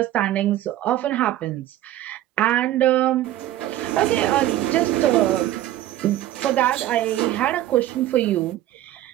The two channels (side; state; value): left; quieter; 13.9 dB